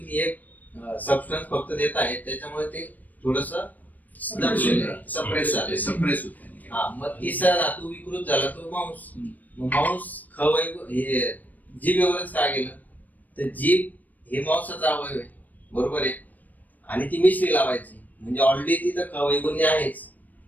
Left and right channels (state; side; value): late; right; 0.082 ms